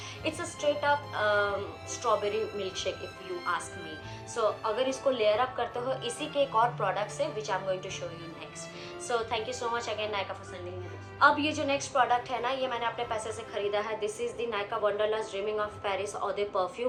it's a straight up strawberry milkshake if you ask me. So अगर इसको layer up करते हो इसी के एक और product से, which I'm going to show you next. So thank you so much again Nykaa for sending me this. अब ये जो next product है ना, ये मैंने अपने पैसे से खरीदा है. This is the Nykaa Wanderlust Dreaming of Paris Eau de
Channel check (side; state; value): both; identical; correlation 1.00